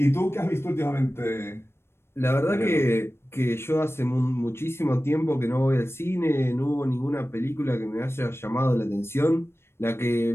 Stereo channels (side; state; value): right; late; 0.12 ms